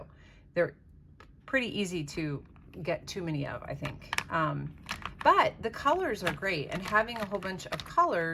they're pretty easy to get too many of, I think. But the colors are great, and having a whole bunch of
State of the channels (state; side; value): identical; both; correlation 1.00